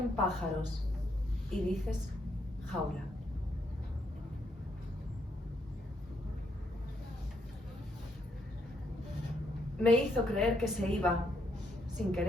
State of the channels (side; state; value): both; normal; correlation 0.75